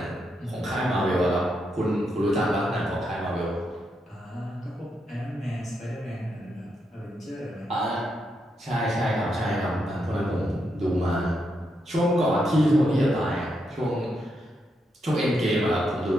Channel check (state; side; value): normal; both; correlation 0.82